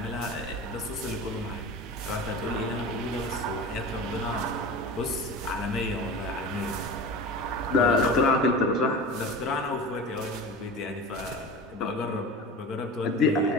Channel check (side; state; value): both; normal; correlation 0.32